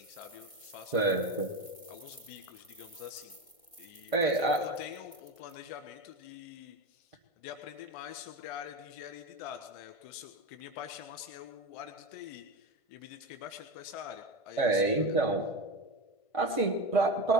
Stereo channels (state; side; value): late; right; 1.5 ms